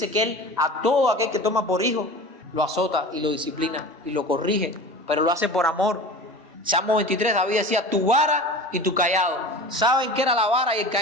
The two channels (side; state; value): both; normal; correlation 0.35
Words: que Él a todo aquel que toma por hijo lo azota y lo disciplina y lo corrige, pero lo hace por amor. Salmo 23, David decía, tu vara y tu cayado. ¿Saben qué era la vara y el